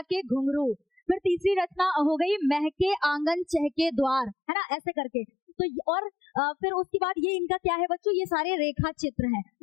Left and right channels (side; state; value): right; drops out; at 4.4 s